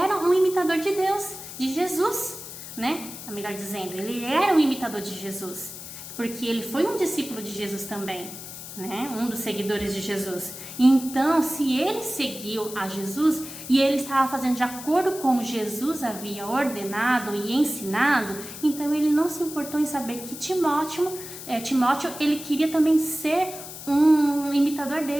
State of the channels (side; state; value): left; noise; hiss, 12 dB below the sound